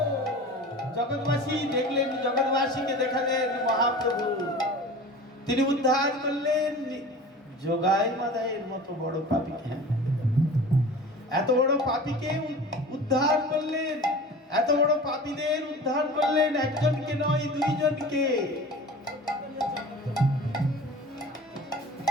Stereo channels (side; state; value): both; normal; correlation 0.38